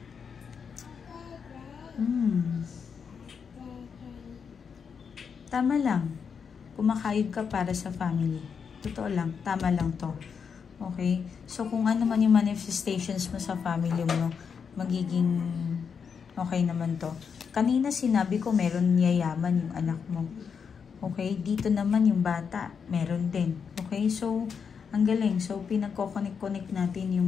tama lang. Kumakayod ka para sa family. Totoo lang. Tama lang to. Okay? So, kung ano man yung manifestations mo sa family mo, magiging okay naman to. Kanina sinabi ko, meron yayaman yung anak mo. Okay? Dito naman yung bata, meron din. Okay? So, ang galing. So, pinagko-connect natin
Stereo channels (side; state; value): right; quieter; 6.4 dB